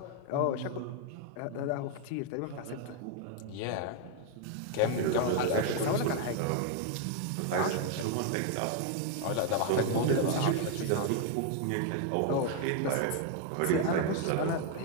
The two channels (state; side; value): different; both; correlation 0.00